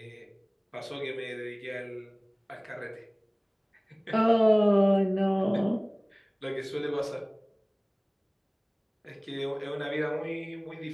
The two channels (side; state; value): both; identical; correlation 1.00